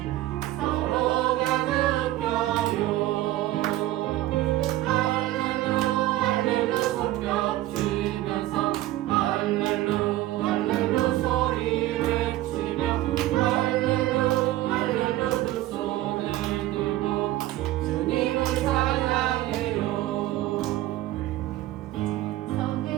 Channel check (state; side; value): quieter; left; 15.6 dB